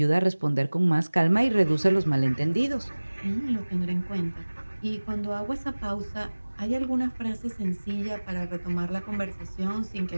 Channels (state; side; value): inverted; both; correlation -1.00